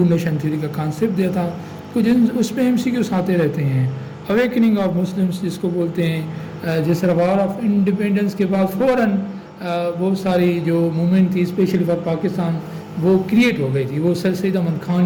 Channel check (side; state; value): both; identical; correlation 1.00